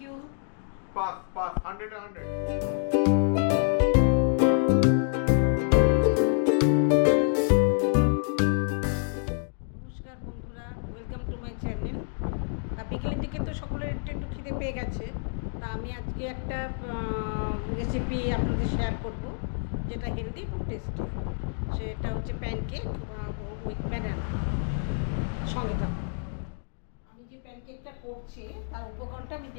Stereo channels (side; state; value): right; silent; 59 dB below the other